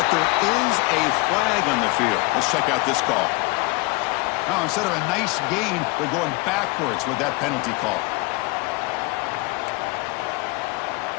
there is a flag on the field. Let's check out this call. Now, instead of a nice gain, they're going backwards with that penalty call.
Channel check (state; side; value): quieter; right; 24.6 dB